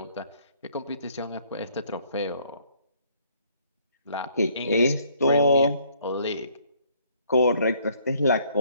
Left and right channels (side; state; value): both; inverted; correlation -0.63